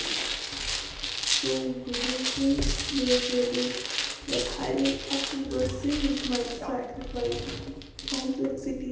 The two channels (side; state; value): both; identical; correlation 1.00